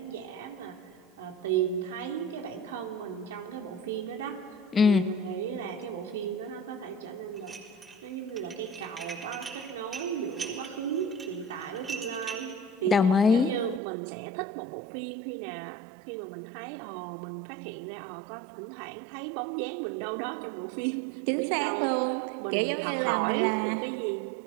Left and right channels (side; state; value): left; drops out; at 13.8 s